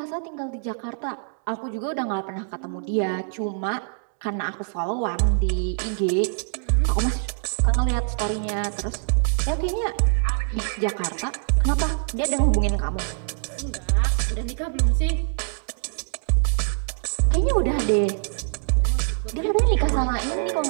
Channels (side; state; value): left; silent; digital silence